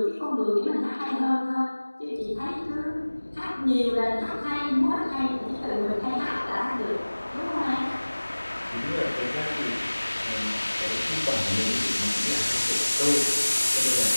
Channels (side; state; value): both; inverted; correlation -1.00